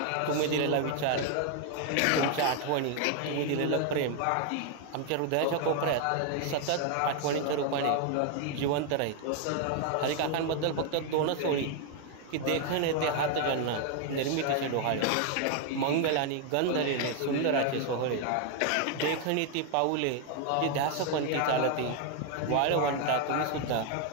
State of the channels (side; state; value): both; different; correlation 0.00